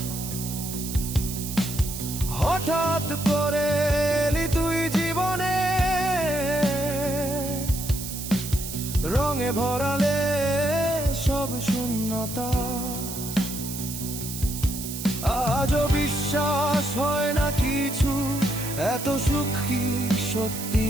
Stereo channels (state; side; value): noise; right; hiss, 8 dB below the sound